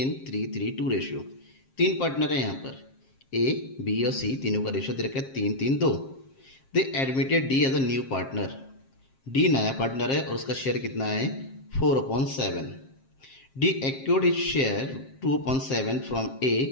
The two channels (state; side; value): late; right; 7.5 ms